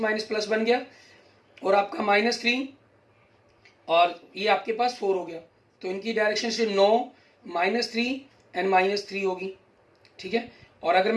प्लस बन गया, और आपका -3 और ये आपके पास 4 हो गया। तो इनकी डायरेक्शन से 9, -3 एंड -3 होगी, ठीक है। और अगर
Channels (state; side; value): identical; both; correlation 1.00